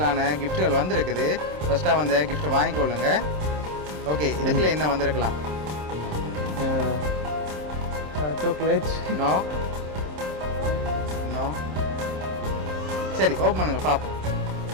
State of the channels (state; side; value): late; left; 27 ms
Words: கிஃப்ட்டுகள் வந்திருக்குது ஃபஸ்ட்டாக வந்து கிஃப்ட்டை வாங்கிக்கொள்ளுங்க ஓகே இதுக்குள்ள என்ன வந்திருக்கலாம் சாக்லேட். நோ நோ சரி ஓப்பன் பண்ணுங்க பாப்போம்